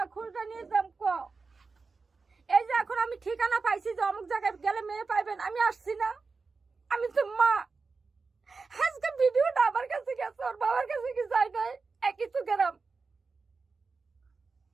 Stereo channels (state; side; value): quieter; left; 4.4 dB